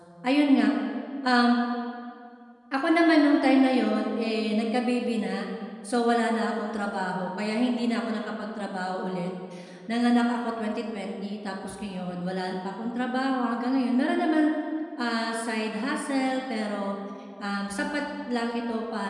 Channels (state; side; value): identical; both; correlation 1.00